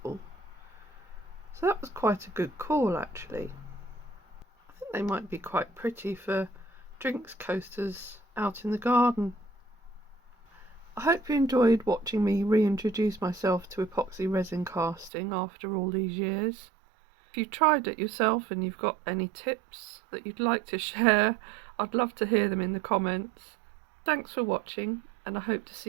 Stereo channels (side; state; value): left; drops out; at 15.1 s